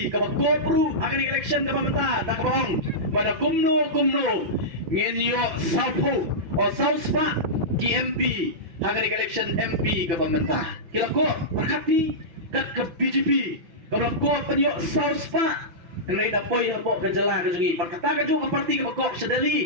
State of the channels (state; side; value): late; left; 6.3 ms